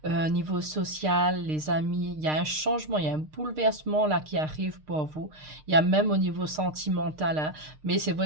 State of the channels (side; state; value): left; late; 6.6 ms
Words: niveau social, les amis, il y a un changement, il y a un bouleversement là qui arrive pour vous. Il y a même au niveau sentimental. Mais c'est